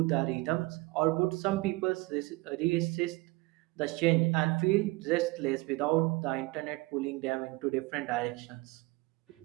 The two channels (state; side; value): quieter; left; 22.4 dB